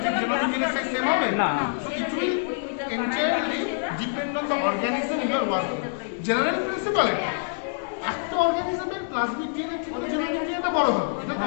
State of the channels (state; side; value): silent; right; digital silence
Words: ঠিক জেনোমিক ডিএনএ সাইজ সেম হবে না। So it will entirely depend on the organism you are working. General principle এটা, একটা অর্গানিজমের প্লাজমিক ডিএনএ থেকে জেনোমিক ডিএনএটা বড় হবে, এটা তো